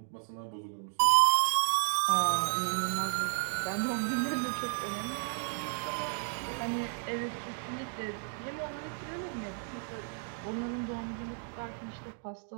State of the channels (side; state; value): left; silent; 56 dB below the other